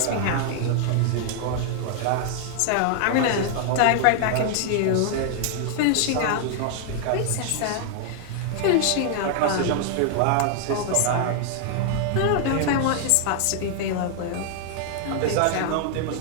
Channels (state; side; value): different; both; correlation 0.00